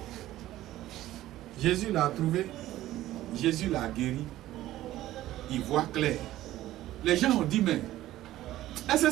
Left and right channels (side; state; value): left; quieter; 14.8 dB